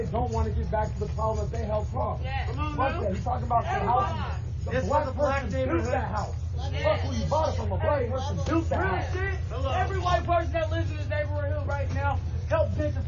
don't want to get back to the problem that they helped cause. Fuck that. You talking about the house? The black person built that house. Fuck who you bought it from. A black person built that house. Every white person that lives in this neighborhood right now helped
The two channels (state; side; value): identical; both; correlation 1.00